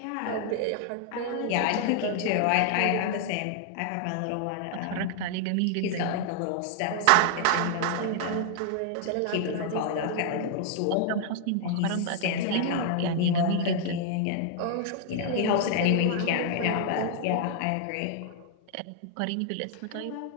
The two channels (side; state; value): both; different; correlation 0.00